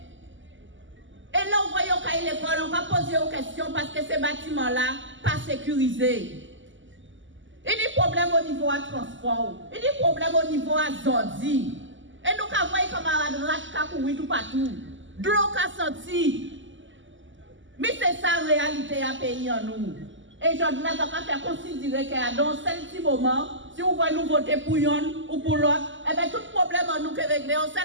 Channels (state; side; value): late; left; 0.55 ms